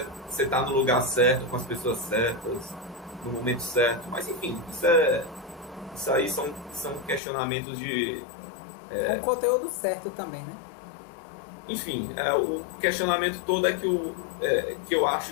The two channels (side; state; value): right; drops out; at 7.2 s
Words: está no lugar certo, com as pessoas certas, no momento certo. Mas enfim, isso isso aí são questionamentos de... Com o conteúdo certo também, né? Enfim, o questionamento todo é que eu